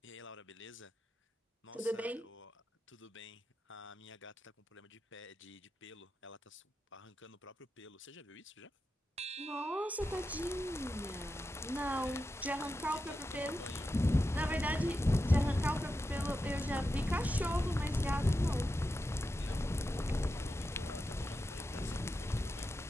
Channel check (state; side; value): normal; both; correlation 0.89